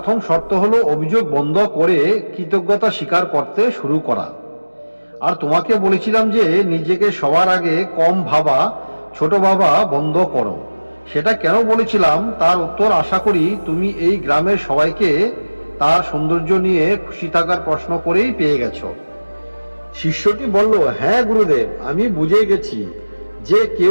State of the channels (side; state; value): both; inverted; correlation -1.00